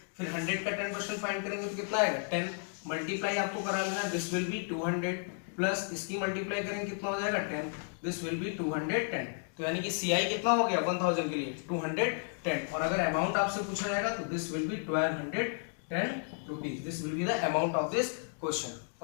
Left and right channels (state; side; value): silent; right; 56 dB below the other